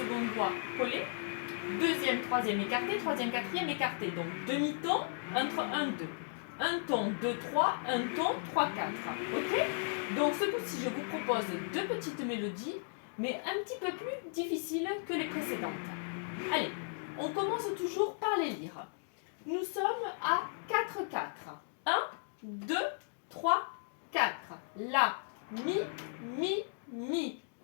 doigts collés, deuxième, troisième écarté, troisième, quatrième écarté, donc demi-ton entre 1, 2. Un ton, 2, 3, un ton, 3, 4. Ok? Donc ce coup-ci, je vous propose deux petites mélodies, mais un petit peu plus difficiles que les précédentes. Allez, on commence toujours par les lire. Nous sommes à 4-4. 1, 2, 3, 4. La, mi, mi, mi.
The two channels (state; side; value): silent; right; digital silence